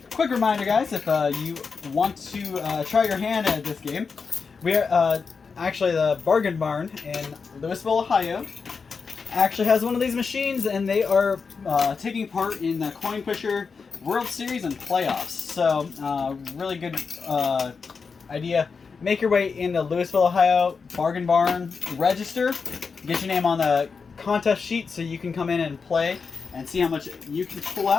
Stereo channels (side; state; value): right; quieter; 5.2 dB